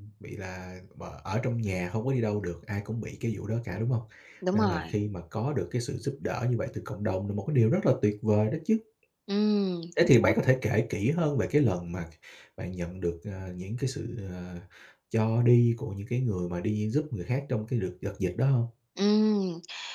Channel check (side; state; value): both; identical; correlation 1.00